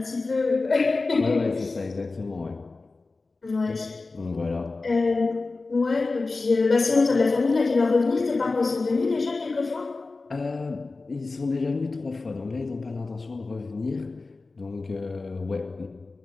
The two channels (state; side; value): quieter; right; 3.7 dB